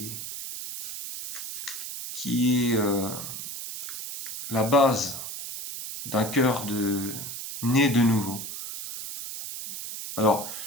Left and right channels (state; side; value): noise; right; hiss, 7 dB below the sound